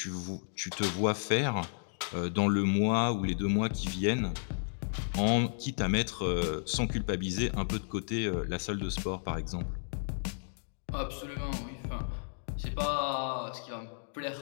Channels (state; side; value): silent; right; digital silence